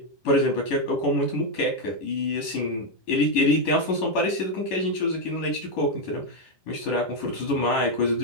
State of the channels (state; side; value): late; right; 11 ms